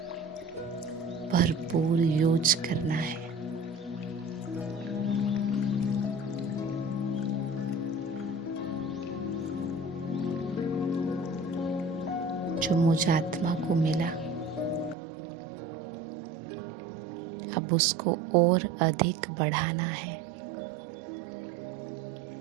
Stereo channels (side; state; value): left; drops out; at 15.0 s